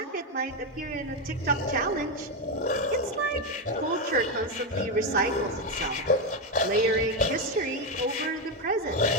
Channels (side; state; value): both; normal; correlation 0.08